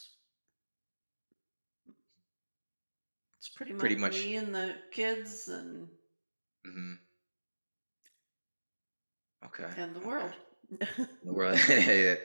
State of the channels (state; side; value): inverted; both; correlation -1.00